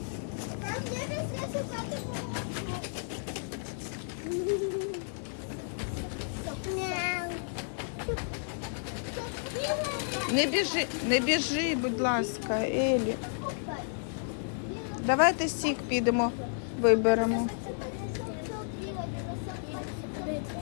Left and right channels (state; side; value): silent; right; digital silence